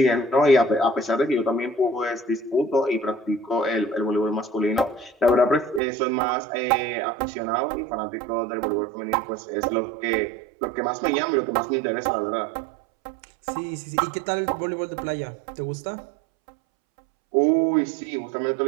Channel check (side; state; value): left; drops out; at 5.8 s